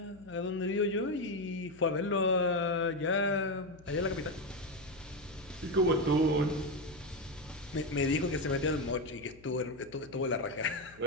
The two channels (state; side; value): noise; left; hum, 23 dB below the sound